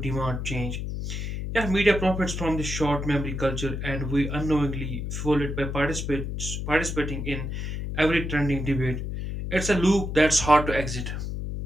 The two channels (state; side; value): noise; left; hum, 4 dB below the sound